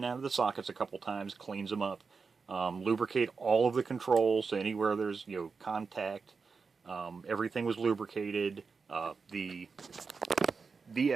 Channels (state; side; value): quieter; left; 4.9 dB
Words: out of the sockets a couple times, cleans them up. Lubricate all of the controls, so anywhere there's, contact, everything was lubricated. The